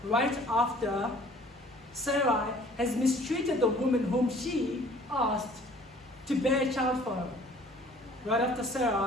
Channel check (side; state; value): both; normal; correlation 0.53